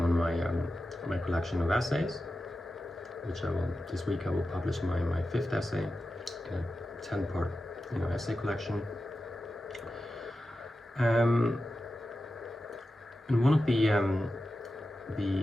my collection of essays, which this week I will publish my fifth essay in a 10-part essay collection. And one of the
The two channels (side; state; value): both; normal; correlation 0.92